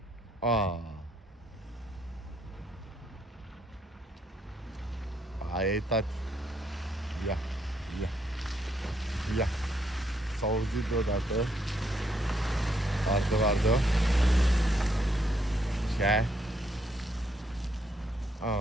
Aia e, tati. Ia, ia, ia. S-a auzit deodată. Vardă. Ce?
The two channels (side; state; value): both; normal; correlation 0.73